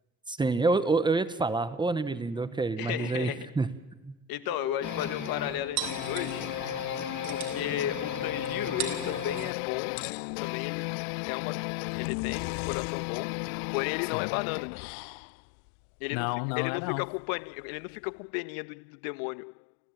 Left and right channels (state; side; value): drops out; right; at 9.5 s